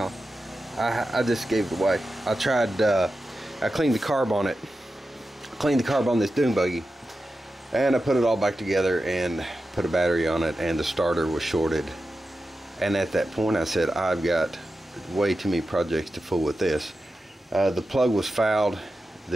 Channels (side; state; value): both; normal; correlation 0.92